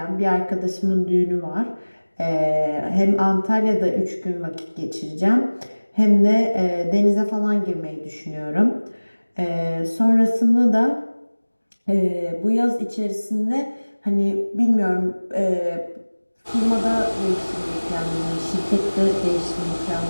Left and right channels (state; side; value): inverted; both; correlation -1.00